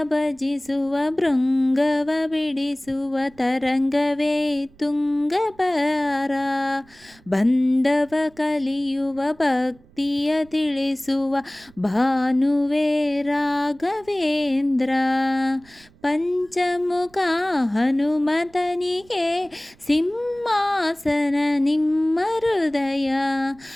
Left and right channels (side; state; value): right; noise; rumble, 27 dB below the sound